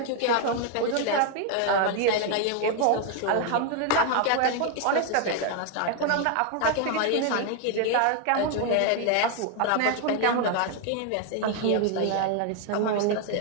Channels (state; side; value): different; both; correlation 0.01